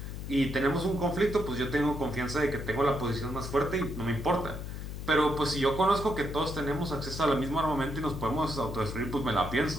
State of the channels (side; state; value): left; noise; hum, 7 dB below the sound